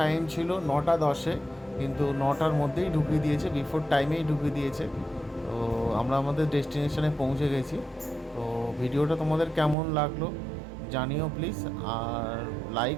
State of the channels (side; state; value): left; drops out; at 9.8 s